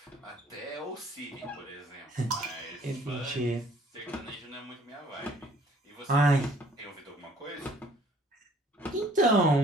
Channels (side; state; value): both; normal; correlation 0.58